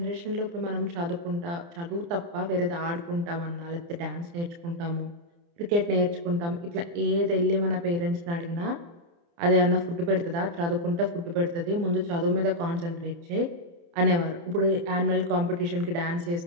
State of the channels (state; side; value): late; left; 29 ms